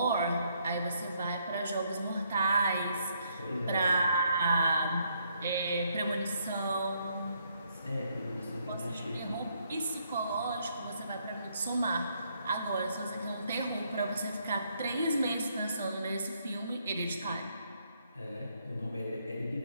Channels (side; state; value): both; inverted; correlation -0.72